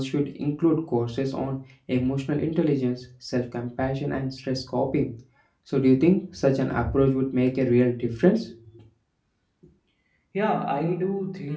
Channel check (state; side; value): identical; both; correlation 1.00